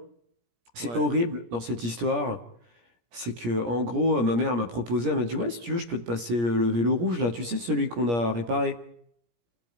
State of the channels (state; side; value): late; left; 17 ms